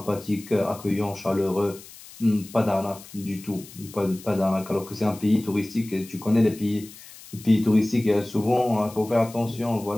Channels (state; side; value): noise; left; hiss, 18 dB below the sound